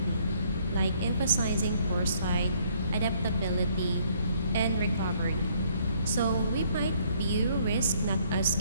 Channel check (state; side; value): inverted; both; correlation -0.65